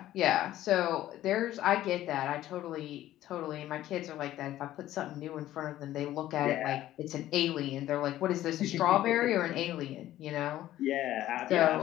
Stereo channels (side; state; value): right; quieter; 13.8 dB